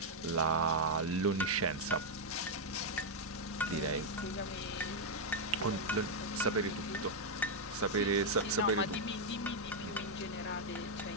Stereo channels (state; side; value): normal; both; correlation -0.02